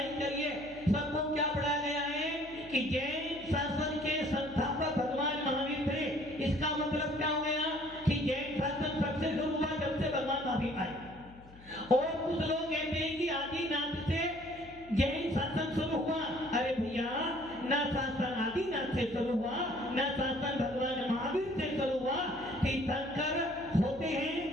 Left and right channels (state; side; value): noise; left; hum, 21 dB below the sound